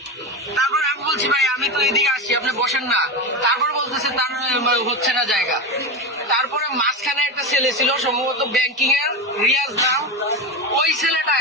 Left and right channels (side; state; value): both; normal; correlation 0.19